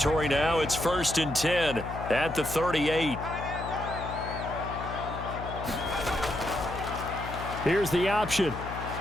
now, it's 1st and 10 at the 38. Here's the option.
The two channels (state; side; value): noise; left; hum, 8 dB below the sound